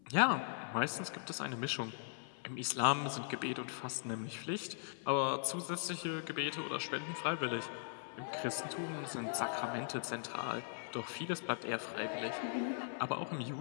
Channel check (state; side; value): silent; right; 51 dB below the other